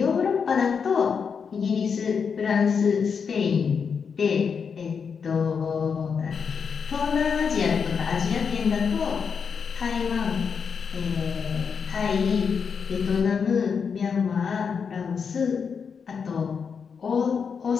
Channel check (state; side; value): quieter; right; 6.2 dB